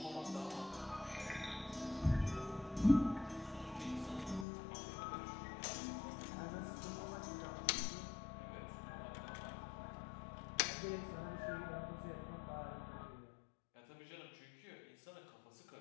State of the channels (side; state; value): right; drops out; at 4.5 s